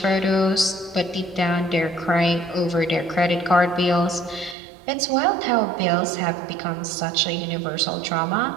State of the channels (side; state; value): left; drops out; at 4.5 s